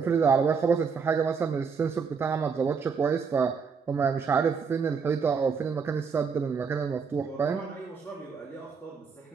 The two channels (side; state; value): left; quieter; 5.7 dB